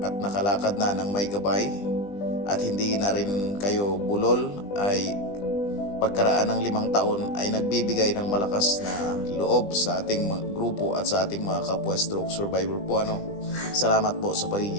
at nakalakad na ng may gabay at hindi na rin kayo bulol ay pagkaraan ng 5 taon ay nagbibigay ng malakas na loob sa ating grupo at sa ating mga kapwa stroke survivor po. Salamat po sa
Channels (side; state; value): right; late; 20 ms